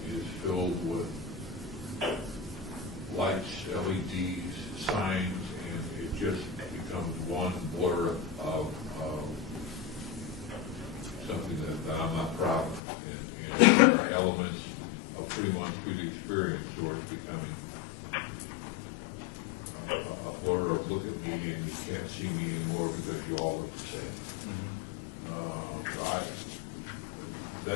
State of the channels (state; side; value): drops out; right; at 12.8 s